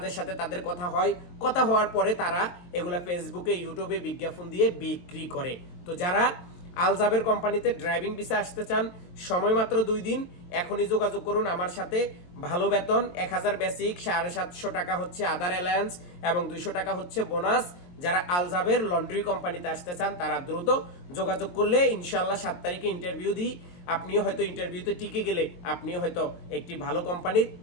সাথে তাদের কথা হয়, কথা হওয়ার পরে তারা এগুলা ফেসবুকে ইউটিউবে বিজ্ঞাপন দিয়ে বিক্রি করে। তো যারা আল জাবের কোম্পানিতে ড্রাইভিং ভিসা আসতে চান, সময় মাত্র 2 দিন, এখনই যোগাযোগ করুন আমার সাথে। ভালো বেতন, 1000 বেসিক, 750 টাকা হচ্ছে আদার অ্যালায়েন্স এবং 200 টাকা হচ্ছে বোনাস। যারা আল জাবের লন্ড্রি কোম্পানিতে আসতে চান তারা দ্রুত যোগাযোগ করলে ইনশাআল্লাহ 7 তারিখে ইন্টারভিউ দিই। আপনিও হয়তো ইন্টারভিউতে টিকে গেলে আপনিও হয়তো একটি ভালো কোম্পানির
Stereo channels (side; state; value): right; late; 23 ms